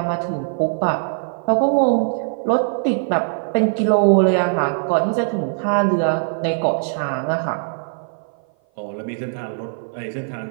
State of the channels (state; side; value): silent; left; 56 dB below the other